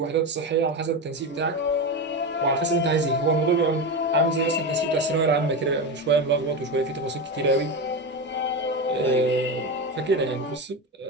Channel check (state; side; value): normal; both; correlation 0.18